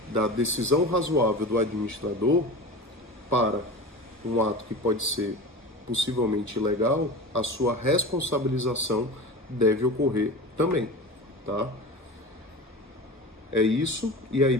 da decisão razoável do administrador para um ato que pode ser possivelmente ilegal, a sua responsabilização deve ocorrer também, tá? É isso, e aí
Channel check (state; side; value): normal; both; correlation 0.32